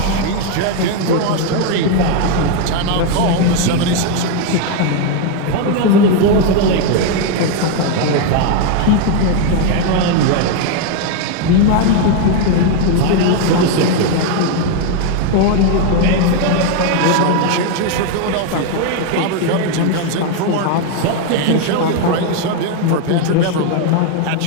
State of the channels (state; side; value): different; both; correlation 0.01